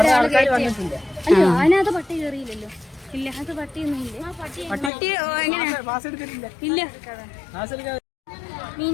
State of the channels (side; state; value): right; drops out; at 4.9 s